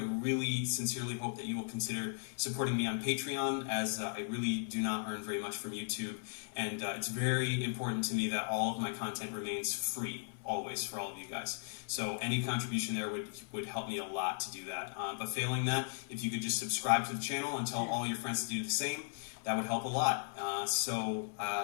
really sincerely hope that you will consider supporting me on Patreon, as I really do not earn very much from YouTube. And it's very important to me that all of my content remains free, always, for all of you guys. So any contribution there would help me a lot to do that. But failing that, if you could just subscribe to the channel and tell all your friends to do the same, that would help a lot. So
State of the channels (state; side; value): silent; right; 53 dB below the other